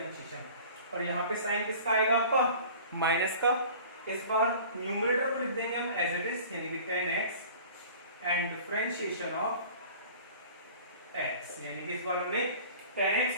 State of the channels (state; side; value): inverted; both; correlation -0.44